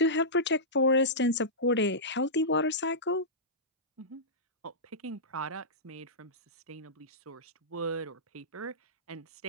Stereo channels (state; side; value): normal; both; correlation -0.15